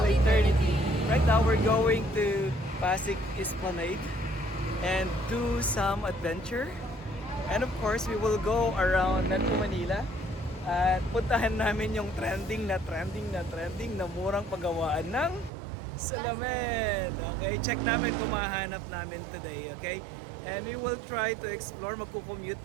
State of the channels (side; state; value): left; drops out; at 15.5 s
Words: eternity. Right now we're going to Pasig Esplanade and do some adventure. And of course, we will go around Metro Manila at puntahan namin yung trending na murang paggawaan ng salamin. Okay, check namin kung mahanap namin today, okay? And we will try to explore,